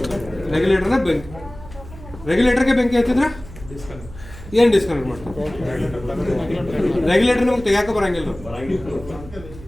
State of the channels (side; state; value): right; noise; hum, 16 dB below the sound